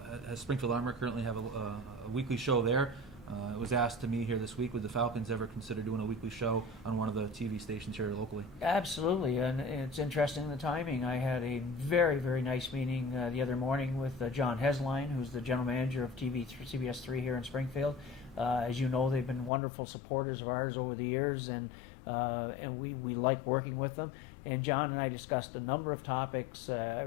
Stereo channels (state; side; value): drops out; right; at 19.5 s